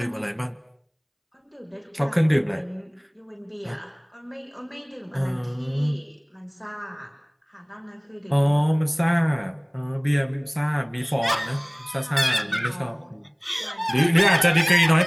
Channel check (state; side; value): identical; both; correlation 1.00